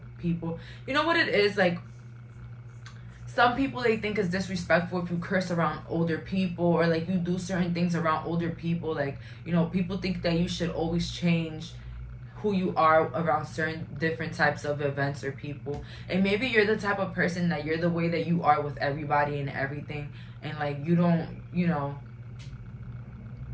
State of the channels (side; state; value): both; identical; correlation 1.00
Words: people. You know what it is? Like, some people, they think it's disrespectful if you curse around older people, or like you do certain things around older people. Like, you know, people think that you should always change who you are around certain different types of events or people. And maybe you're the type of person that you're the way that you are with everybody and everything. And like, you don't, you know,